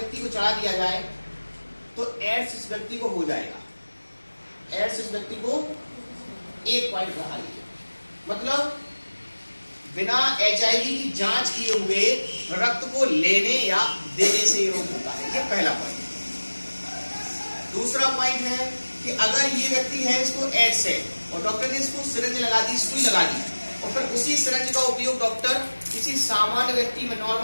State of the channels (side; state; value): both; inverted; correlation -1.00